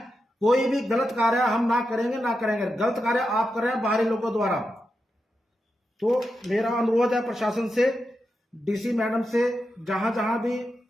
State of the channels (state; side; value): normal; both; correlation 0.88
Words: कोई भी गलत कार्य हम ना करेंगे, ना करेंगे। गलत कार्य आप कर रहे हैं बाहरी लोगों द्वारा। तो मेरा अनुरोध है प्रशासन से, डीसी मैडम से, जहां जहां भी